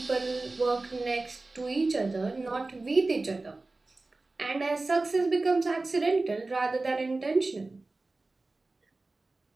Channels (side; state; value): left; quieter; 3.3 dB